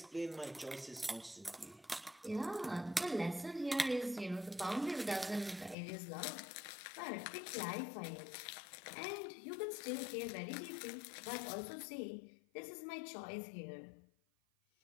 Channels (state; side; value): drops out; right; at 5.8 s